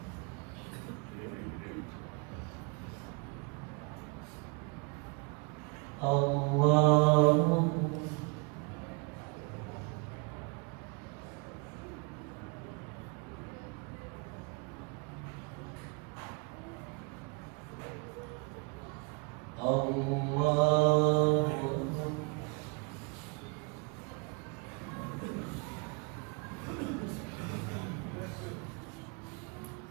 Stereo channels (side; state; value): left; quieter; 32.9 dB